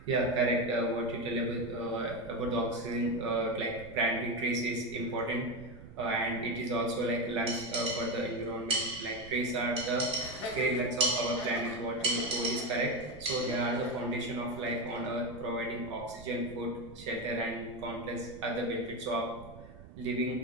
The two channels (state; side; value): noise; right; rumble, 17 dB below the sound